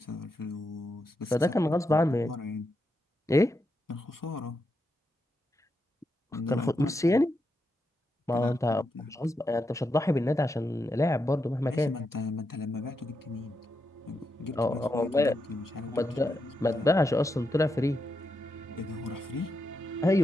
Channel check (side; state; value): both; normal; correlation 0.84